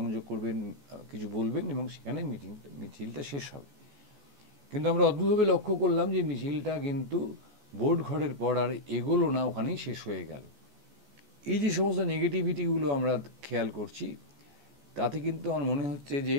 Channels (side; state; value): left; late; 14 ms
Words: করবেন, কিছু বলবেন, এবং সেখানে মিছিলটা শেষ হবে। কিন্তু আমরা অদ্ভুতভাবে লক্ষ্য করলাম যে মিছিলটা কিন্তু ভোট ঘরের পর আর এগোলো না, ওখানেই শেষ হয়ে গেল। এই যে সমস্ত নেগেটিভিটিগুলো আমরা খেয়াল করছি, তাতে কিন্তু আমার মনে হচ্ছে যে